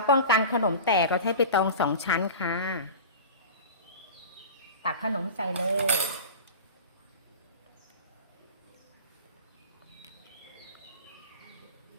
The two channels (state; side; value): inverted; both; correlation -0.33